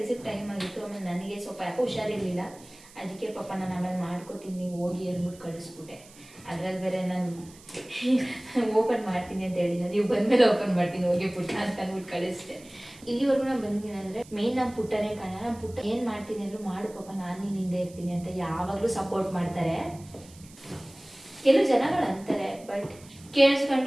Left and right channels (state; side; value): noise; right; hiss, 22 dB below the sound